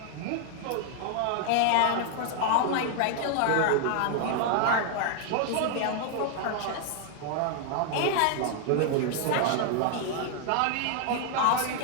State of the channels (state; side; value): different; both; correlation 0.00